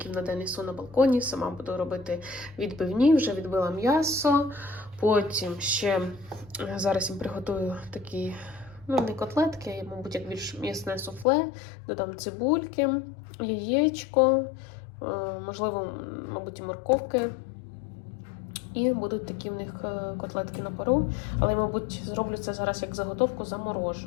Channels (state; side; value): drops out; right; at 11.2 s